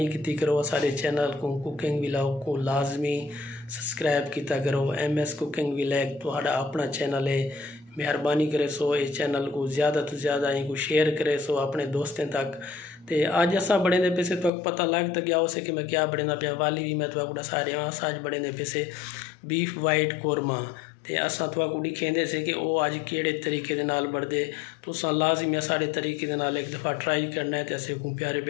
की करो सारे चैनल को कुकिंग व्लॉग को लाजमी सब्सक्राइब किया करो। MS कुकिंग व्लॉग तुहाड़ा अपना चैनल है, मेहरबानी करे सो इस चैनल को ज़्यादा तो ज़्यादा इनको शेयर करे सो अपने दोस्तों तक। तो अज असा बड़े पैसे तो पता लग तो गया उसे कि मैं क्या बड़े पिया वाली भी मैं तो सारे अज बड़े पैसे बीफ वाइट कोरमा। तो असा तो दिखेंदे से कि वो अज केड़े तरीके दे नाल बढ़दे तो लाजमी सारे तरीके दे नाल एक दफ़ा ट्राई करना है। तो असे को प्यारे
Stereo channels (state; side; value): drops out; right; at 14.5 s